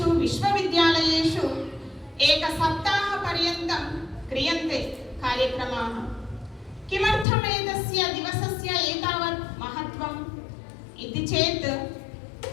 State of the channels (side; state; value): right; drops out; at 7.2 s